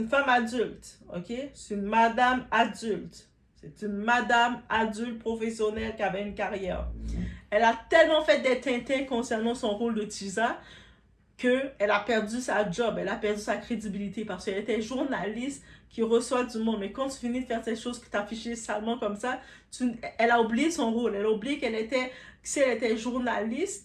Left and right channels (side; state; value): both; identical; correlation 1.00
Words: femme adulte. OK? C'est une madame adulte. C'est une madame adulte professionnelle qui avait une carrière. Elle a tellement fait des tintins concernant son rôle de Tisa qu'elle a perdu sa job, elle a perdu sa crédibilité parce qu'elle était journaliste qui reçoit du monde. Mais quand tu finis de faire ces choses que tu affichées salement comme ça, elle a oublié son rôle. Elle a oublié si elle était